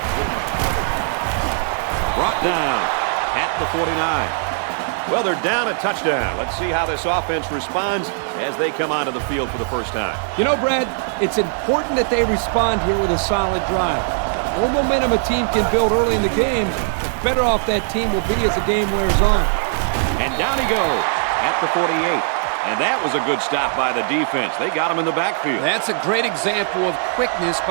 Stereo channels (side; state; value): left; silent; 66 dB below the other